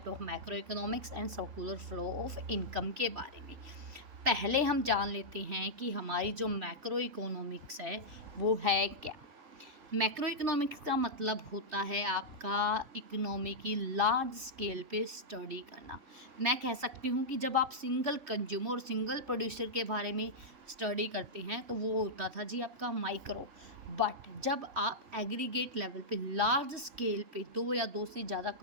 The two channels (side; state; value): left; late; 3.3 ms